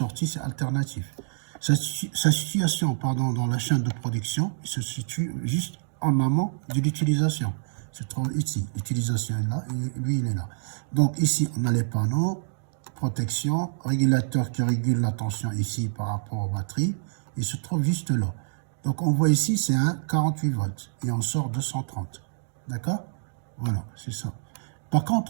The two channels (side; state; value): left; silent; digital silence